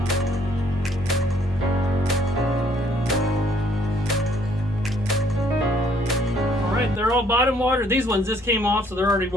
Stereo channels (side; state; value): both; normal; correlation 0.64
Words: They're all bottom watered. These ones just came off, so they're already